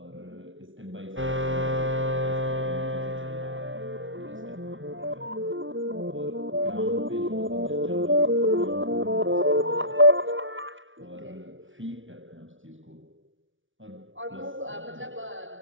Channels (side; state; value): left; late; 0.57 ms